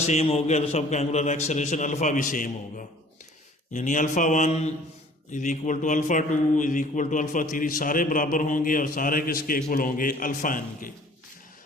सेम हो गया तो सबका एंगुलर एक्सेलरेशन अल्फ़ा भी सेम होगा। यानी alpha 1 is equal to alpha 2 is equal to alpha 3, सारे बराबर होंगे और सारे किसके इक्वल होंगे, अल्फ़ा एन के।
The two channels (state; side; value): normal; both; correlation 0.52